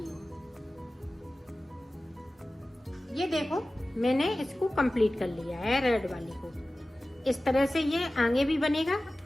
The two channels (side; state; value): both; normal; correlation 0.96